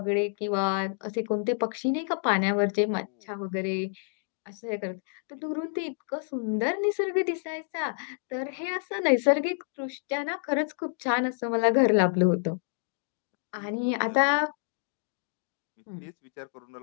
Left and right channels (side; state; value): right; silent; 59 dB below the other